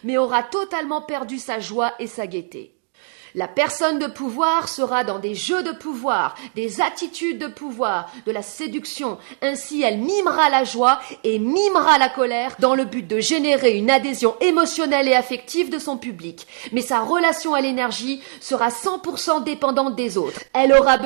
mais aura totalement perdu sa joie et sa gaieté. La personne de pouvoir sera dans des jeux de pouvoir, des attitudes de pouvoir, de la séduction. Ainsi, elle mimera la joie et mimera la colère dans le but de générer une adhésion émotionnelle et affective de son public. Mais sa relation à l'énergie sera 100% dépendante des autres. Elle aura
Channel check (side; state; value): left; silent; digital silence